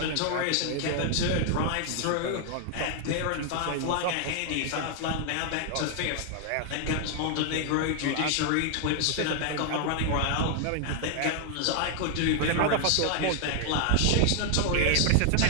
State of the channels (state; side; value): different; both; correlation 0.00